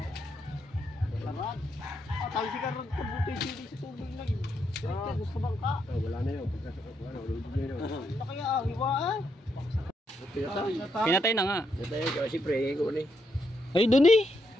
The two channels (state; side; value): normal; both; correlation 0.78